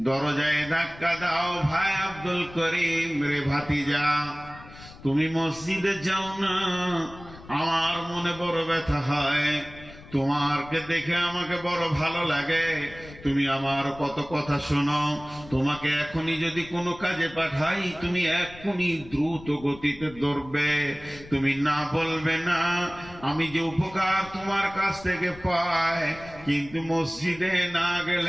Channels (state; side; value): noise; left; rumble, 18 dB below the sound